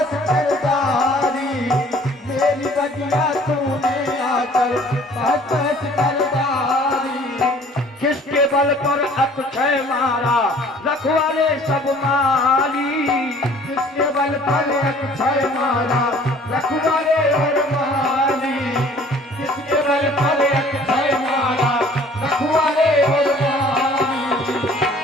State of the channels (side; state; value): both; normal; correlation 0.53